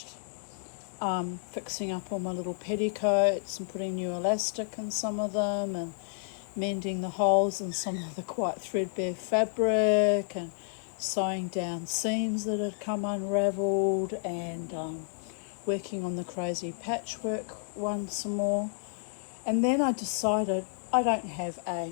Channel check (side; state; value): right; silent; digital silence